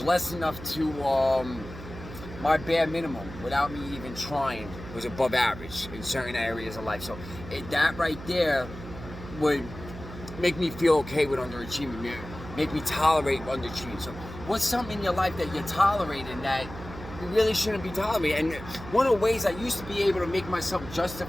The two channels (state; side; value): noise; right; hum, 13 dB below the sound